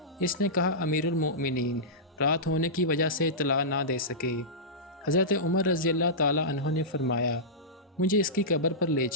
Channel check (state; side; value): normal; both; correlation -0.15